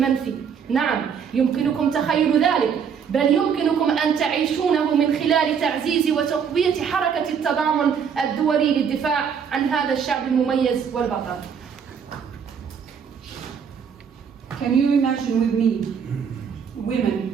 نعم، يمكنكم تخيل ذلك، بل يمكنكم أن تعيشونه من خلال تعزيز وتقوية حركة التضامن الدولي للدفاع عن هذا الشعب المميز والبطل. Can you imagine with me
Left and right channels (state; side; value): quieter; left; 7.0 dB